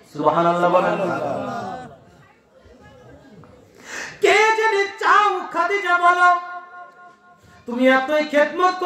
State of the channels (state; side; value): identical; both; correlation 1.00